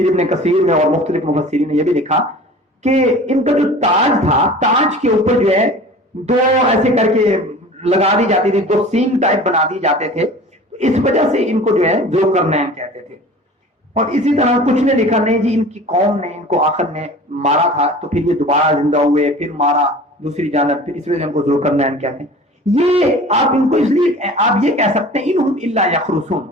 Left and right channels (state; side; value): normal; both; correlation 0.41